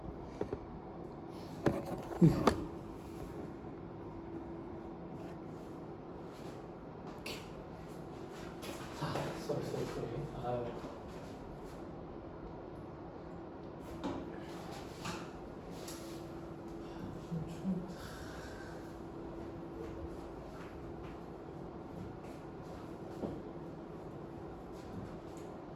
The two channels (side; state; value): both; identical; correlation 1.00